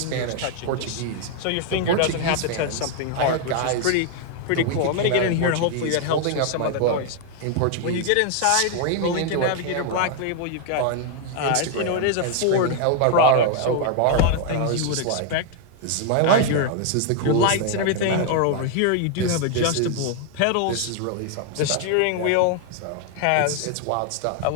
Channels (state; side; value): different; both; correlation 0.00